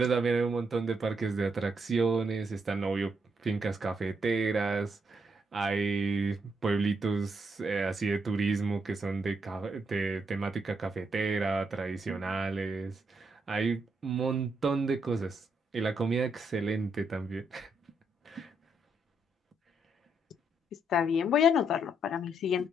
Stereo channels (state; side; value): normal; both; correlation 0.77